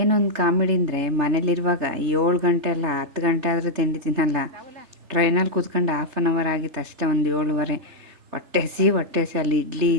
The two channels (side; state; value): left; late; 3.3 ms